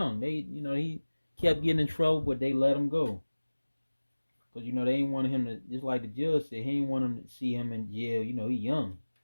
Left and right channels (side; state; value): both; inverted; correlation -1.00